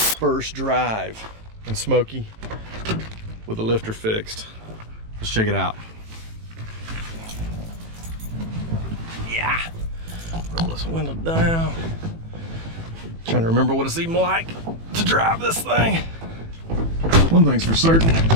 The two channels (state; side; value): late; left; 18 ms